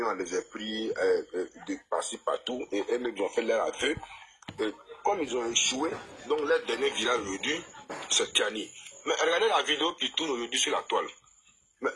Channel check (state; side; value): identical; both; correlation 1.00